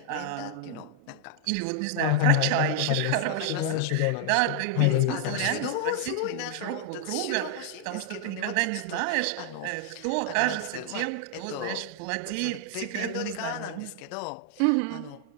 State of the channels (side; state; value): both; different; correlation 0.00